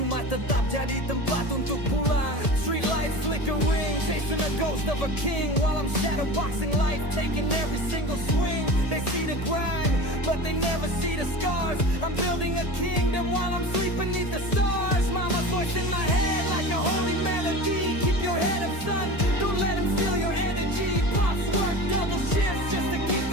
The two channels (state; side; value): late; right; 1.7 ms